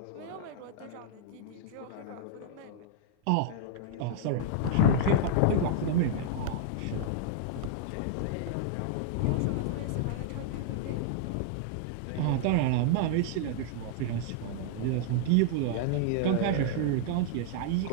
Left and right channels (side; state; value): both; different; correlation -0.01